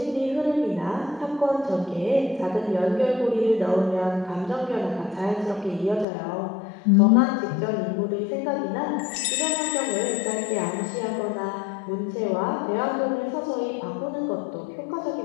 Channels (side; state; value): right; drops out; at 6.1 s